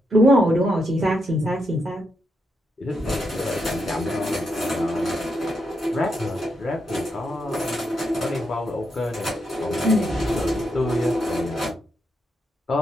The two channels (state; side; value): normal; both; correlation 0.82